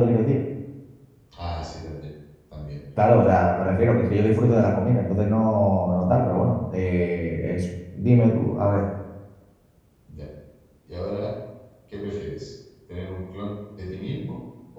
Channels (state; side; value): identical; both; correlation 1.00